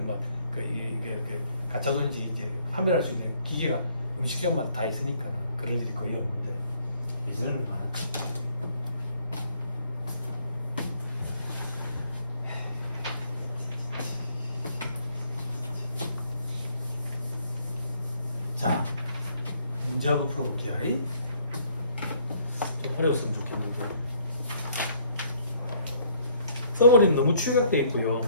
막 이게 가짜 돈인지 이제 판별할 수 있는 기계가 음식점마다 다 있으니까 그럴 일이 거의 없는데 예전에는 많았지. 자, 문제 한번 풀어볼게요. 좀 어려웠으면 좋겠는데 써버리는 너무 축약되어 있고요.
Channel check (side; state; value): both; inverted; correlation -0.64